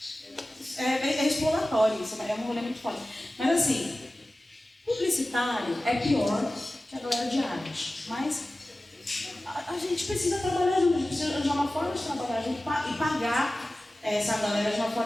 exploratório, isso é um rolê muito forte. Mas assim, publicitário é pior que a galera de arte, mas a gente precisa trabalhar junto, a gente precisa arranjar uma forma de trabalhar junto e pagar essa galera de uma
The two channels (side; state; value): both; normal; correlation 0.96